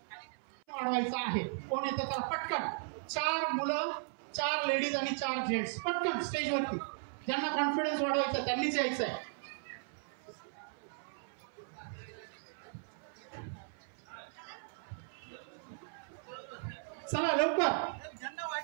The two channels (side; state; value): left; silent; 53 dB below the other